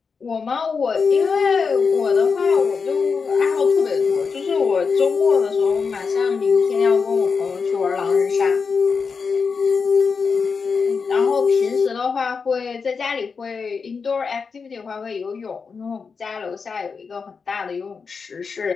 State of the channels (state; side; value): quieter; right; 5.3 dB